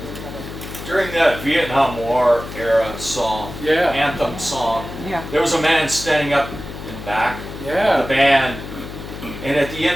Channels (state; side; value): noise; left; hum, 11 dB below the sound